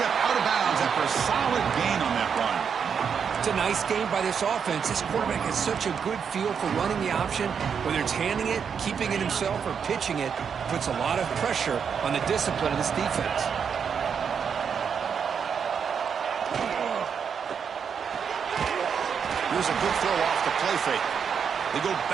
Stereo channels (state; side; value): quieter; left; 6.9 dB